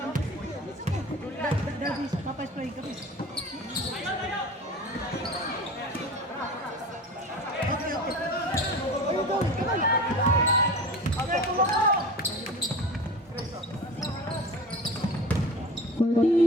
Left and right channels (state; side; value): normal; both; correlation 0.34